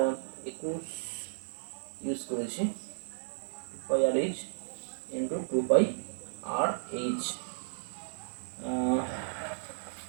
21 ইউজ করেছি, 2πr/h ইন্টু 2πr/h।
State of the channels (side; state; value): left; silent; 55 dB below the other